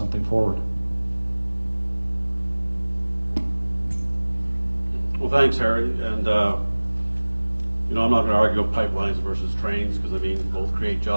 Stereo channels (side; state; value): both; inverted; correlation -1.00